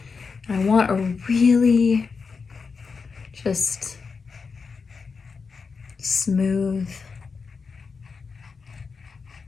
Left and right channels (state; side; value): quieter; right; 5.1 dB